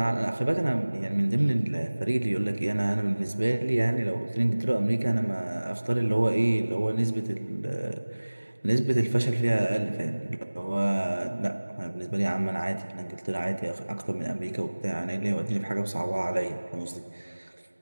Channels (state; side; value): inverted; both; correlation -1.00